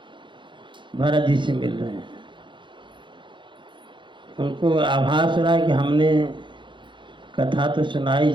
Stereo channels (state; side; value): late; left; 0.23 ms